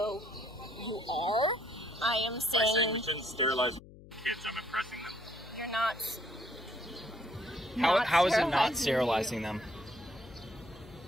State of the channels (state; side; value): noise; left; hum, 19 dB below the sound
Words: you are. I am By saying saying we shouldn't sterilize kids, I'm oppressing them. you're not. How is it not sterilizing sterilizing them?